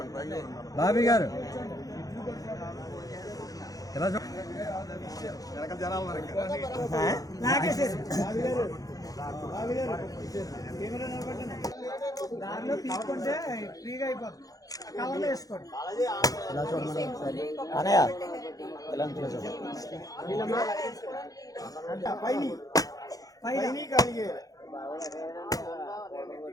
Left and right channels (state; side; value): late; right; 0.17 ms